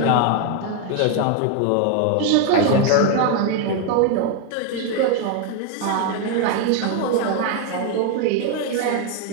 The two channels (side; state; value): both; different; correlation 0.01